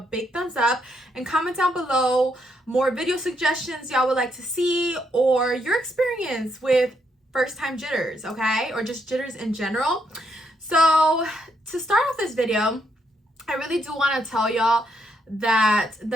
thumbs up, and comment down below more video suggestions y'all would like to see, or your experience with first time jitters, okay? Or just jitters in general. So to start off this video, I really do want to tell y'all that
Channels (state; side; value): normal; both; correlation 0.76